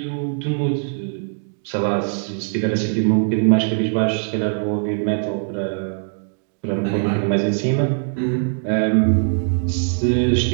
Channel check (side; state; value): left; silent; digital silence